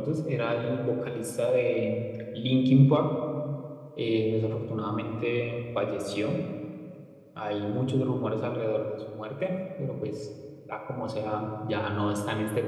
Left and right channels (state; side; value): identical; both; correlation 1.00